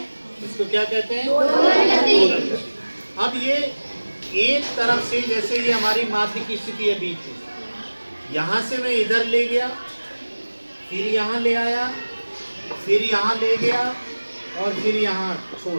इसको क्या कहते हैं? दोलन गति। अब ये एक तरफ से, जैसे ये हमारी माध्य की स्थिति है बीच में, यहाँ से मैं इधर ले गया, फिर यहाँ ले आया, फिर यहाँ ले गया और फिर यहाँ छोड़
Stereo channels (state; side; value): inverted; both; correlation -1.00